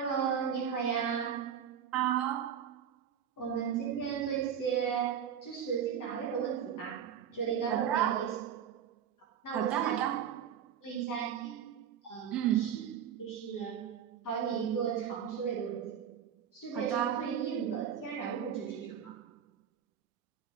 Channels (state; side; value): quieter; left; 8.6 dB